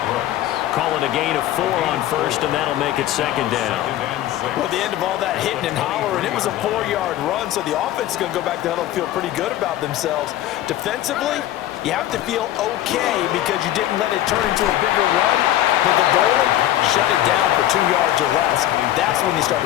Call it a gain of 4 on first, and that'll make it second down. Well, the end of all that hitting and hollering, it was a 4-yard run, so the offense is going to go back to huddle and feel pretty good about themselves. Defensively, you have to feel okay because you didn't let it turn into a bigger run, but the goal, shut it down for 2 yards or less. That's when you start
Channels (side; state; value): right; quieter; 13.5 dB